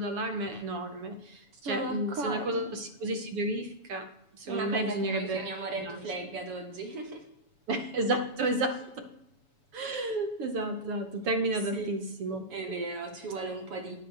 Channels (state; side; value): late; left; 7.1 ms